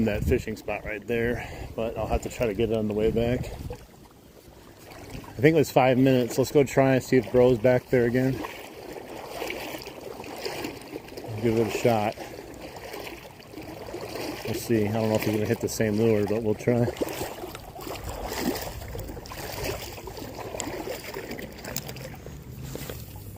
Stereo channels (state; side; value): identical; both; correlation 1.00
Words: that fishing spot right there, but I'll have to try to get it on the way back. I think it was 5 minutes. Let's go try and see if Bro's back there again. Give it a shot. We'll see. I don't know if he's going to hit the same lure, but we'll try.